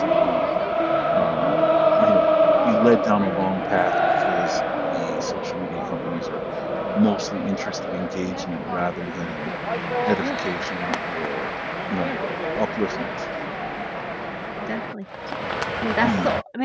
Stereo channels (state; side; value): identical; both; correlation 1.00